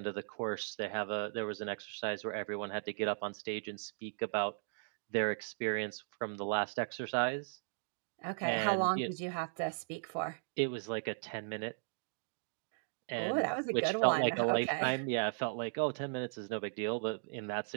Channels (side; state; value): left; silent; digital silence